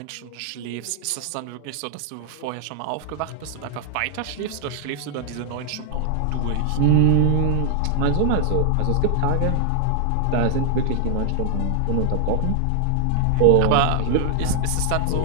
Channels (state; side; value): different; both; correlation 0.00